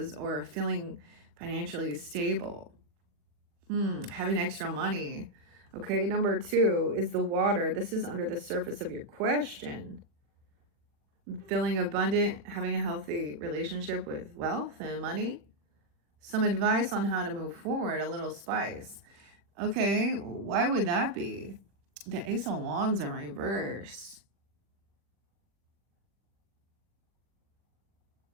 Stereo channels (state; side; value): late; left; 40 ms